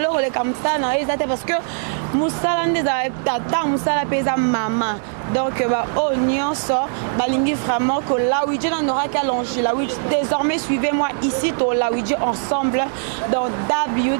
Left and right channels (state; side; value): silent; left; digital silence